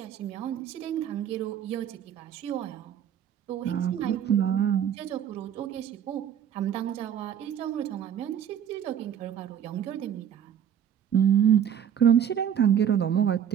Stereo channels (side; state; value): left; quieter; 9.1 dB